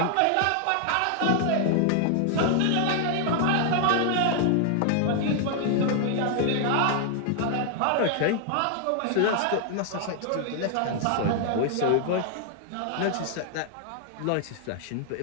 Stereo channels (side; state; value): both; different; correlation 0.00